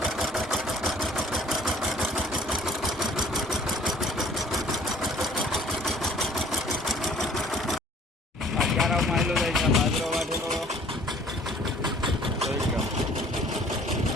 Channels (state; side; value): normal; both; correlation 0.54